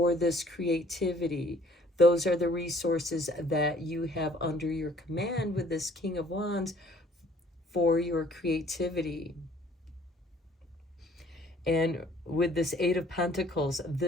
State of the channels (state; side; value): normal; both; correlation 0.57